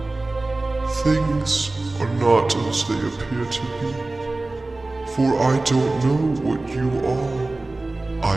Things are not as they appear to be. For I don't know what you are.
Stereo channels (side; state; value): left; quieter; 3.0 dB